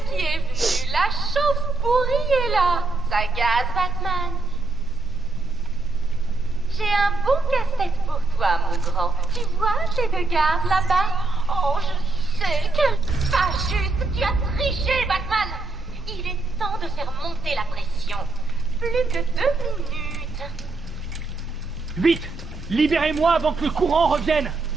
qui est venu. La chauve-pourrie est là. Ça gaz, Batman. J'ai un bon casse-tête pour toi, mon grand. Tu vois ces deux gardes là-bas? Oh, je sais, quel pas juste. Tu as triché, Batman. Il est temps de faire monter la pression. Plus que 2 minutes. Vite! Libérez-moi avant que le courant revienne!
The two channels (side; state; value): left; quieter; 3.3 dB